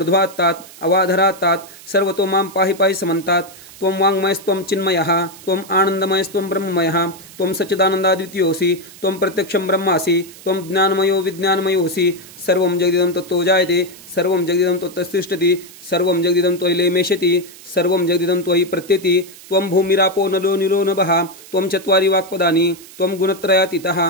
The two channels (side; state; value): right; noise; hiss, 19 dB below the sound